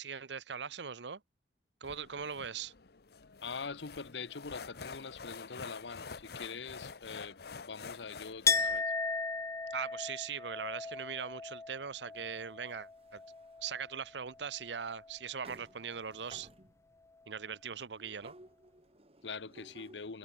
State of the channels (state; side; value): normal; both; correlation -0.16